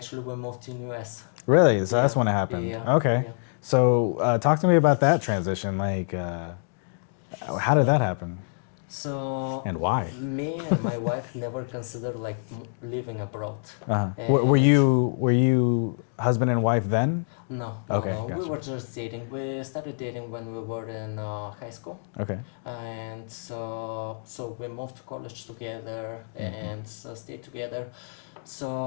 we moved to US. Really? So that's when it happened. Yeah. Okay. Yeah. So talk to me about that transition. Like, how did that happen? So and why? Me and my wife never considered living abroad. Were you husband and wife then? No, Okay, no. We gotcha. were just dating. We started dating when we were in high school, Okay. and so we moved to college together and stayed together. So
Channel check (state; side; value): silent; right; digital silence